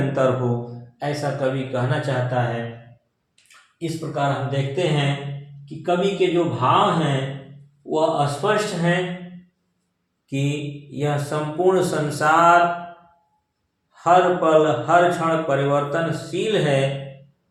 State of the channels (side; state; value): both; identical; correlation 1.00